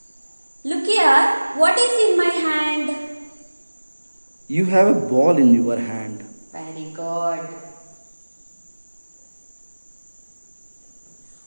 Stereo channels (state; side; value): inverted; both; correlation -1.00